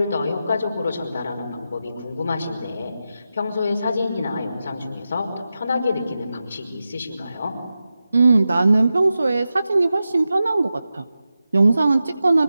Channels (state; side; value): inverted; both; correlation -0.92